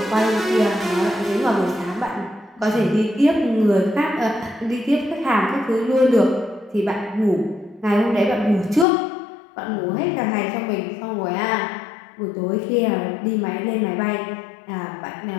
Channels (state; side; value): drops out; right; at 8.8 s